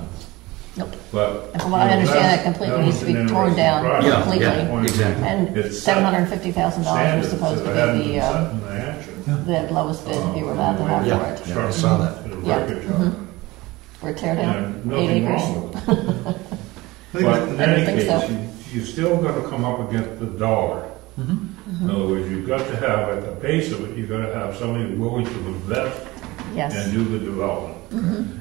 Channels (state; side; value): quieter; left; 20.6 dB